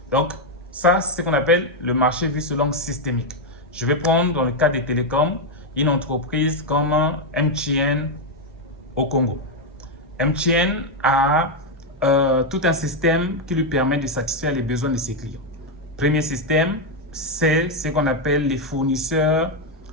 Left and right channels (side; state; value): both; normal; correlation 0.03